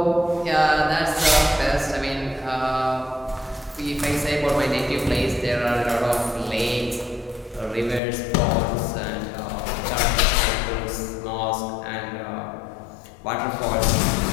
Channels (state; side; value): drops out; right; at 8.0 s